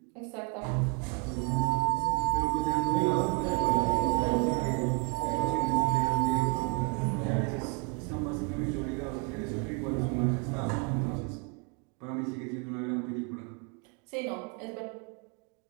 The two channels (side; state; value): left; quieter; 35.9 dB